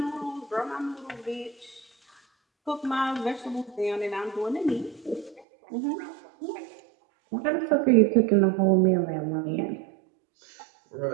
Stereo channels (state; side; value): drops out; left; at 5.4 s